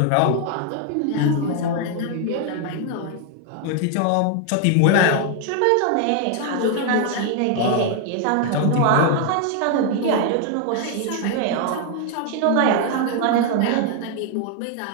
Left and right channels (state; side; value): different; both; correlation 0.00